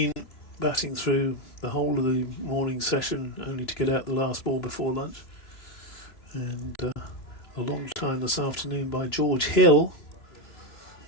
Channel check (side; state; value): right; late; 3.0 ms